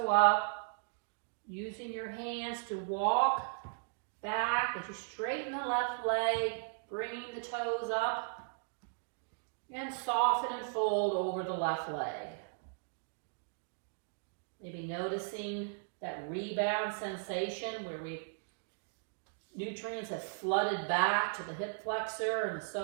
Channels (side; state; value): left; silent; digital silence